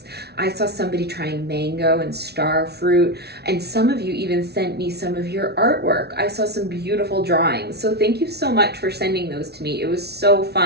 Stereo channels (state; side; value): late; left; 0.48 ms